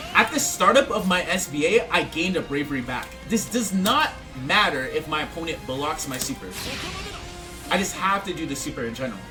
At the startup of my SBA, I gained a bravery back. This does not matter if my opponent blocks my super. I just have to do the super in general.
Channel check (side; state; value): both; identical; correlation 1.00